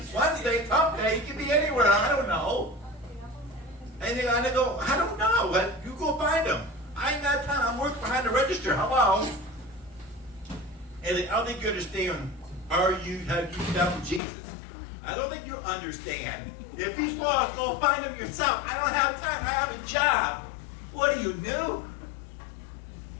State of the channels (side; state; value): right; drops out; at 14.2 s